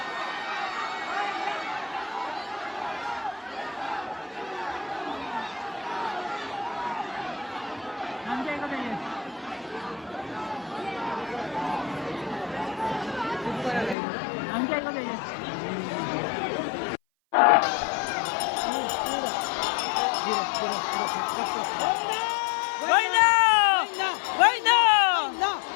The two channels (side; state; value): right; drops out; at 14.0 s